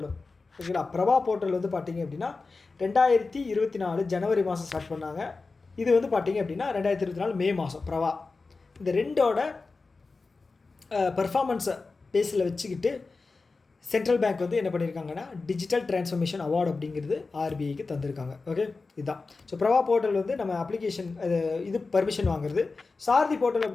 ஓகேங்களா? பிரபா போர்ட்டல் வந்து பார்த்திங்க அப்படின்னா 2024 ஜனவரி மாதம் ஸ்டார்ட் பண்ணாங்க. இது வந்து பார்த்திங்க அப்படின்னா 2024 மே மாதம் பிரபா. இந்த ரெண்டோட பர்ஃபார்மன்ஸை பேஸில் வச்சுக்கிட்டு சென்ட்ரல் பேங்க் வந்து என்ன பண்ணியிருக்காங்கன்னா, டிஜிட்டல் டிரான்ஸ்ஃபர்மேஷன் அவார்டு அப்படிங்கிறது ஆர்பிஐக்கு தந்திருக்காங்க. ஓகே, இதுதான். ஸோ பிரபா போர்ட்டல் வந்து நம்ம அப்ளிகேஷன் இது பர்மிஷன் வாங்குறது. சாரதி போர்ட்டல்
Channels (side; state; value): right; quieter; 4.0 dB